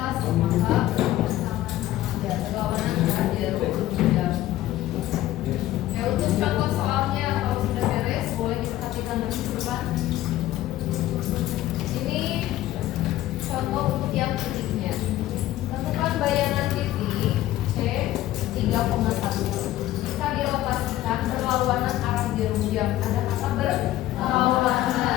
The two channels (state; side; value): quieter; right; 14.6 dB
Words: maka ya berlawanan arah jarum jam. Ya untuk contoh soalnya kalau sudah beres boleh diperhatikan nanti ke depan. Ini contoh untuk yang titiknya. Tentukan bayangan titik C 3,1. Jika dirotasikan berlawanan arah jarum jam. Ada kata